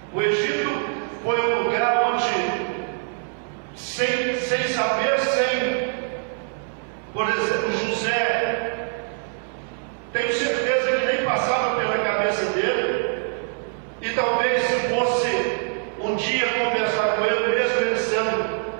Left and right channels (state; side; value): silent; left; 63 dB below the other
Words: O Egito foi um lugar onde, sem saber, por exemplo, José, tenho certeza que nem passava pela cabeça dele, e talvez se fosse um dia conversar com ele, mesmo ele sendo